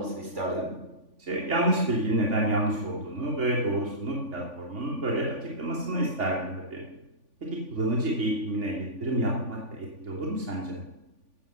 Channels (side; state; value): left; late; 3.5 ms